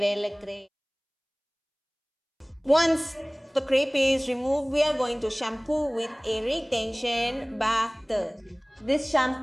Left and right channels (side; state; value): both; identical; correlation 1.00